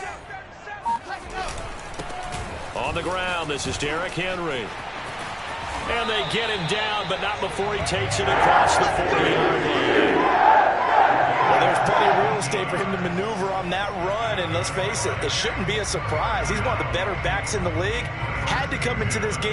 On the ground, this is Derrick Henry. And they get him down, but not before he takes it across the 40-yard line. Well, there's plenty of real estate for him to maneuver on that run, and let's face it, it shouldn't be a surprise. He's one of the better backs in the league. Had to come into this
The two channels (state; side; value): identical; both; correlation 1.00